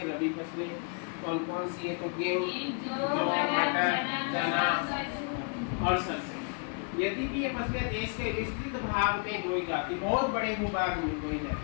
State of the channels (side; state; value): right; quieter; 38.2 dB